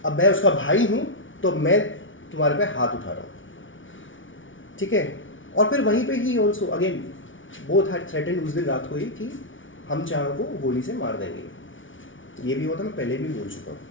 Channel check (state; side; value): late; right; 0.56 ms